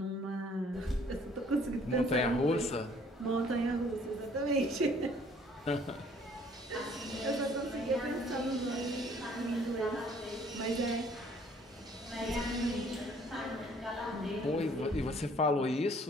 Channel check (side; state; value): both; normal; correlation 0.59